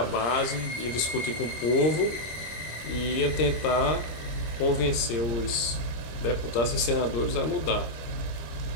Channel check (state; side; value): late; right; 26 ms